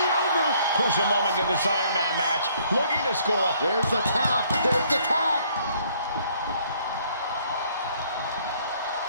over. Crucial moment in this Iron Man match. Looking to score a... There's the tap. There's the tap.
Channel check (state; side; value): inverted; both; correlation -0.63